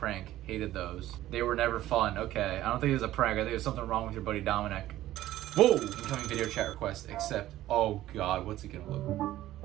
hated those. They were never fun. Okay, I don't think it was a prank. I think there's something wrong with your buddy Dominic. Whoa! Incoming video chat request. Accept. Oh god, what's it gonna look?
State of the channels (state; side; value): quieter; left; 14.4 dB